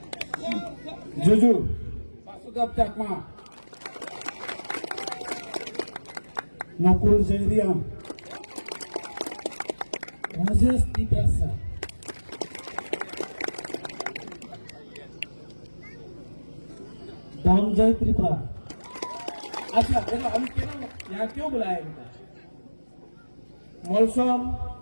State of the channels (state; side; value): inverted; both; correlation -1.00